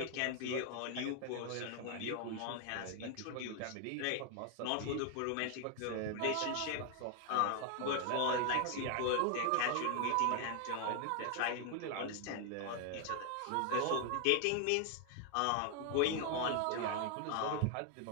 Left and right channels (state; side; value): different; both; correlation 0.00